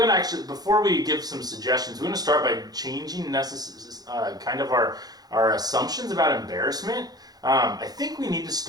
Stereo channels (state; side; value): late; left; 0.19 ms